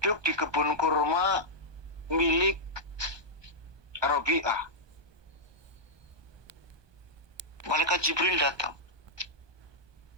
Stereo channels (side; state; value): left; late; 1.2 ms